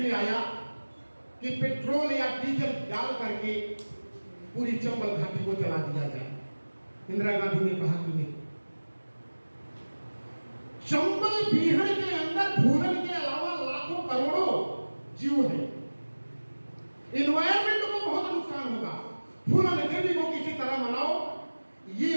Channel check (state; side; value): inverted; both; correlation -1.00